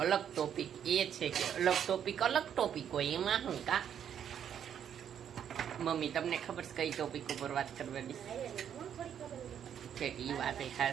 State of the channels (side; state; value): left; quieter; 9.0 dB